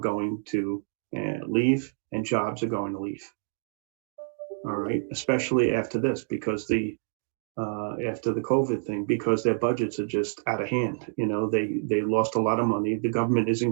to leave and jobs are going to leave. All right. Especially after this, because after the COVID thing, because their budgets are just out of hand. You know, they lost a lot of money. The government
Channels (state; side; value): silent; left; digital silence